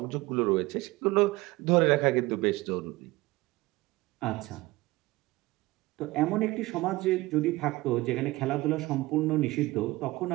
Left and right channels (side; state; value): left; quieter; 20.3 dB